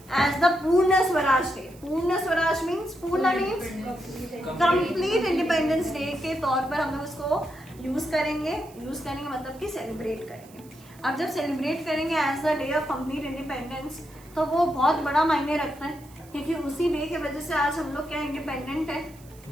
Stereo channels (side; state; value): right; noise; hiss, 25 dB below the sound